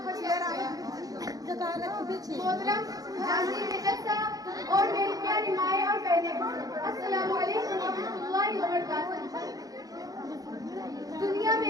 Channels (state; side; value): late; left; 0.18 ms